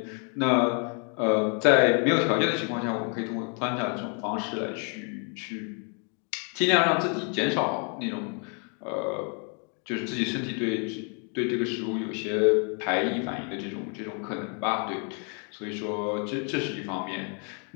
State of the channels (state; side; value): quieter; right; 39.6 dB